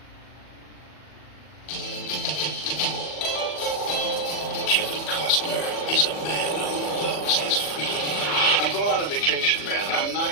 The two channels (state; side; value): late; right; 40 ms